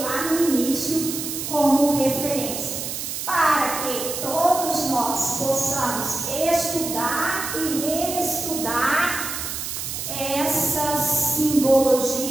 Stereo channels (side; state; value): right; noise; hiss, 5 dB below the sound